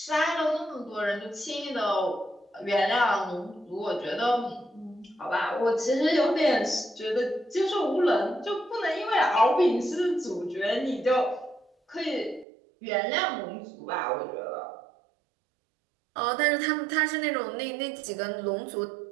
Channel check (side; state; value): left; drops out; at 12.5 s